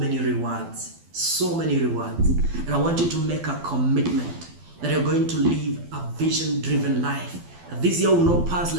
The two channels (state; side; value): late; left; 12 ms